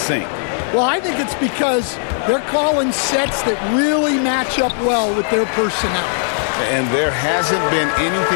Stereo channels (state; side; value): silent; right; 61 dB below the other